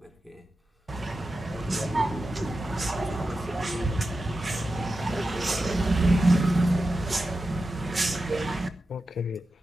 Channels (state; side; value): normal; both; correlation 0.91